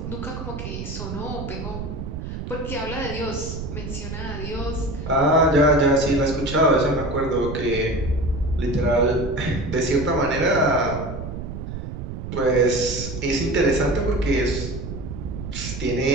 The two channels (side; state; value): right; noise; rumble, 7 dB below the sound